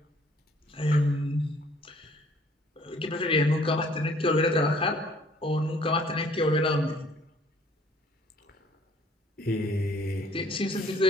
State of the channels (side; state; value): both; normal; correlation 0.58